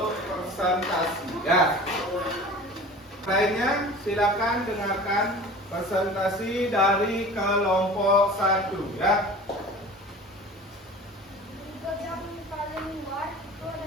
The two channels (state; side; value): normal; both; correlation 0.39